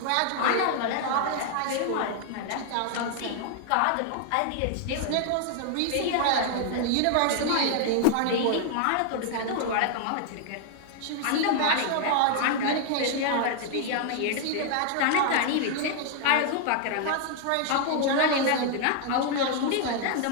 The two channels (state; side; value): different; both; correlation 0.00